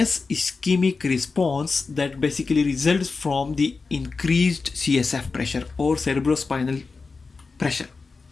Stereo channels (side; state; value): right; quieter; 4.3 dB